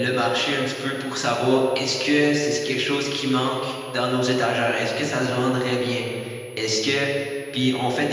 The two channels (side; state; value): both; identical; correlation 1.00